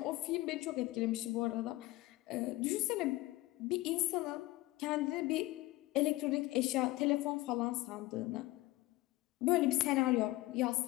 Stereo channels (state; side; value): quieter; right; 19.0 dB